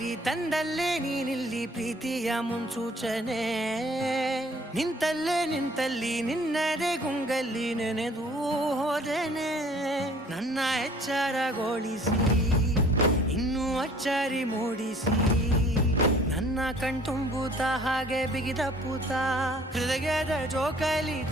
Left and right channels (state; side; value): normal; both; correlation 0.55